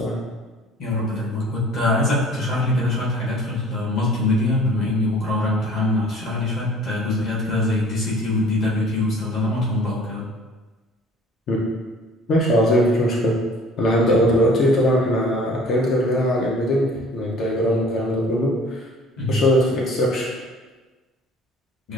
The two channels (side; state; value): both; normal; correlation 0.50